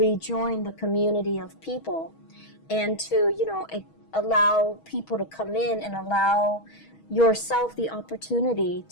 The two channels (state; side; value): late; right; 6.3 ms